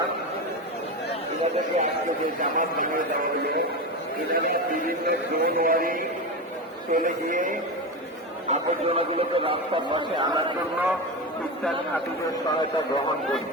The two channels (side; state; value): both; normal; correlation 0.19